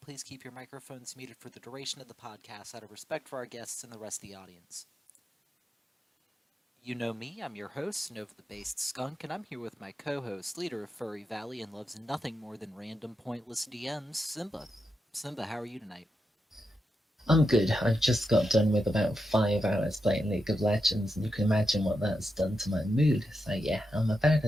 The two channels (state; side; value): normal; both; correlation 0.86